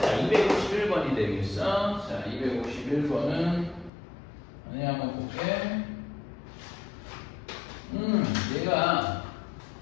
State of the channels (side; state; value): right; drops out; at 3.9 s